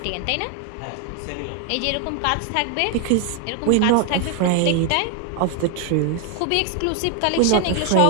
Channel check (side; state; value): both; different; correlation 0.00